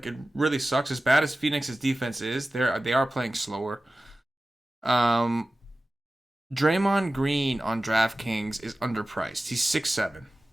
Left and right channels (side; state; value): both; normal; correlation 0.96